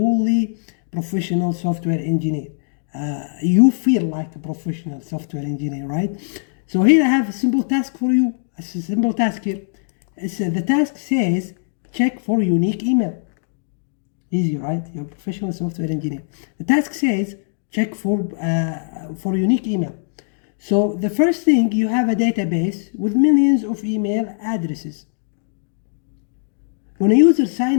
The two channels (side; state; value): right; silent; digital silence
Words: professional software engineer. You feel like a professional software engineer, right? So here I have a simple task for you. It's a simple task here. The task says check for unique email. Easy, right? You're a professional software engineer. The task says check for unique email. So the first thing, you have a database with millions of email addresses. When a user